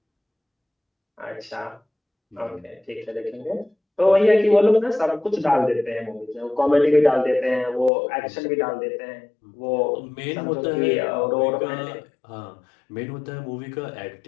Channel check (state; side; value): drops out; right; at 7.9 s